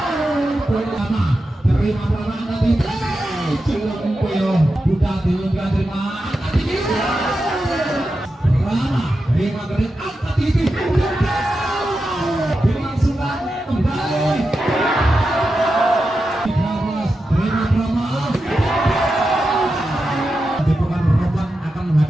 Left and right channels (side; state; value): both; normal; correlation 0.90